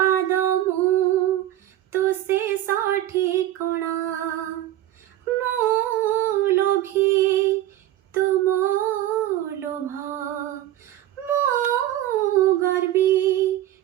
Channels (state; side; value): quieter; left; 13.5 dB